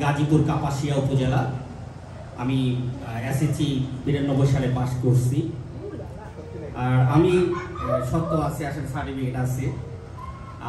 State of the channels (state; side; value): identical; both; correlation 1.00